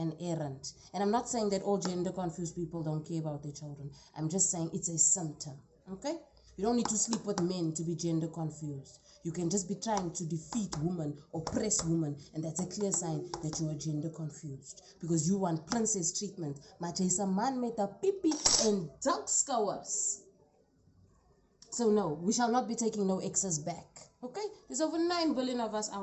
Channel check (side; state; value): both; identical; correlation 1.00